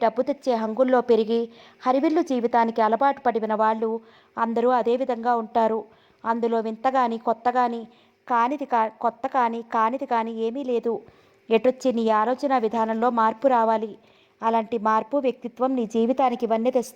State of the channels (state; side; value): identical; both; correlation 1.00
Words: డబ్బు తెచ్చే హంగుల్లో పెరిగి హరివిల్లు జీవితానికి అలవాటు పడిన వాళ్ళు అందరూ అదే విధంగా ఉంటారు. అందులో వింతగాని కానిది కానీ ఏమీ లేదు. ఎటొచ్చి నీ ఆలోచన విధానంలో మార్పు రావాలి. అలాంటి మార్పు, వ్యక్తిత్వం నీ జీవితానికి ఇవన్నీ